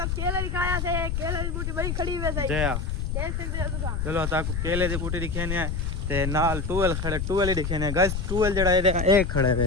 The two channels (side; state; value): left; noise; rumble, 2 dB below the sound